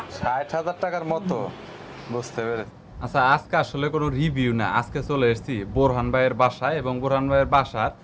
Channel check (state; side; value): identical; both; correlation 1.00